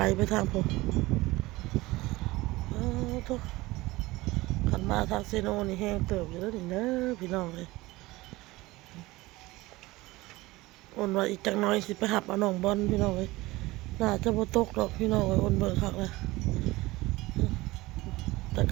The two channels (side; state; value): left; quieter; 20.0 dB